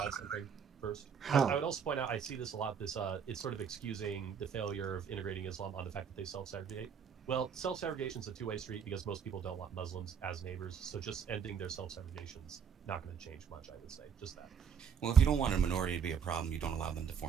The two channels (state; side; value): quieter; left; 7.1 dB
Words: add something first? How? I would also point out, I see this a lot, it's sort of excusing the failure of integrating Islam on the fact that they self-segregate. Well, self-segregation is a two-way street because most people don't want Muslims as neighbors, so just ending their self-segregation is not going to change much, I would say. Just that. Well, if you don't want a minority to be a problem, you don't allow them to